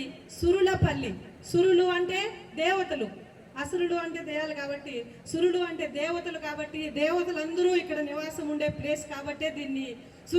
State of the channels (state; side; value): identical; both; correlation 1.00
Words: సురులపల్లి. సురులు అంటే దేవతలు, అసురుడు అంటే దయాలు కాబట్టి, సురుడు అంటే దేవతలు కాబట్టి, దేవతలందరూ ఇక్కడ నివాసం ఉండే ప్లేస్ కాబట్టి దీన్ని